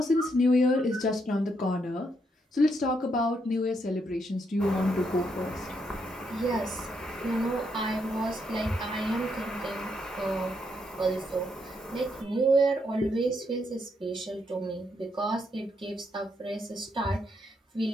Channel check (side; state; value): both; normal; correlation 0.77